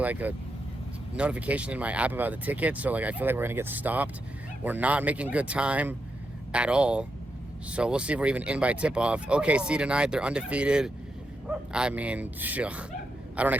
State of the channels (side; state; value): both; normal; correlation 0.84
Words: a notification in my app about the ticket, so like I feel like we're gonna get stopped. We're not making good time at all, so we'll see if we're even in by tip-off. OKC tonight, they're undefeated. I mean, I don't